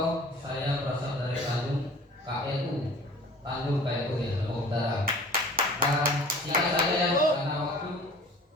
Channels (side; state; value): both; normal; correlation 0.45